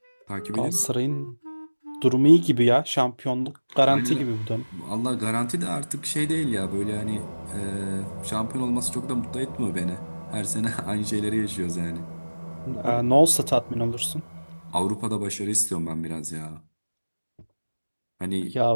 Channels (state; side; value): inverted; both; correlation -1.00